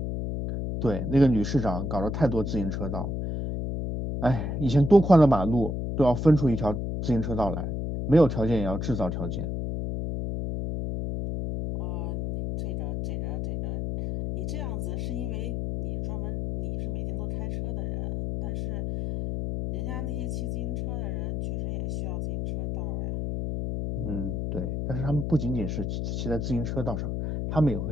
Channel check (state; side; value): noise; left; hum, 2 dB below the sound